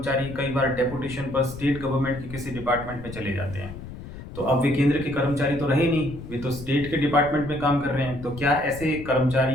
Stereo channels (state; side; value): noise; left; rumble, 12 dB below the sound